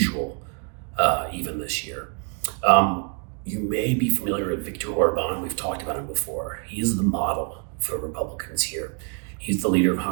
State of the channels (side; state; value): left; quieter; 36.8 dB